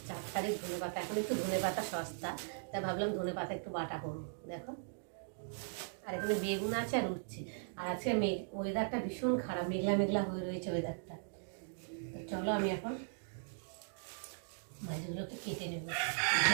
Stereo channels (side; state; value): left; silent; digital silence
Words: 4 তারিখ ধনে পাতা। এখন একটু ধনে পাতা সস্তা, তাই ভাবলাম ধনে পাতা একটু বাটা করবো। দেখো, আর এখানে বেগুন আছে আর উচ্ছে। আর আজকে ওয়েদারটা ভীষণ খারাপ, মেঘলা মেঘলা হয়ে রয়েছে ওয়েদারটা। তো চলো আমি এখন মাছগুলোকে কেটে নেব,